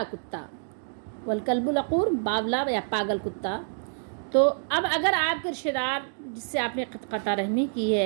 کتا، والکلب العقور، باولا یا پاگل کتا۔ تو اب اگر آپ کے رشتہ دار جس سے آپ نے قطع رحمی کی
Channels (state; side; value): silent; left; digital silence